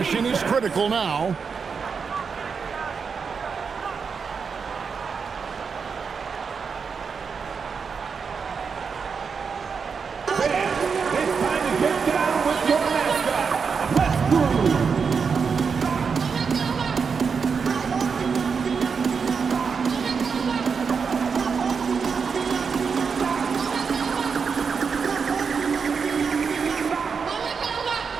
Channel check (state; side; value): quieter; left; 5.7 dB